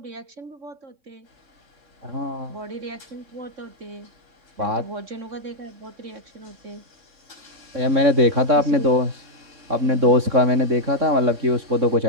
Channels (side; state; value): left; late; 3.6 ms